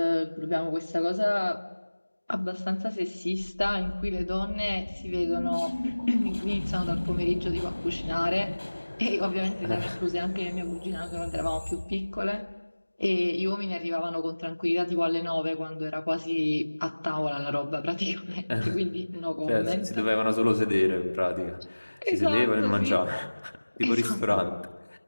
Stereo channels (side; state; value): both; inverted; correlation -1.00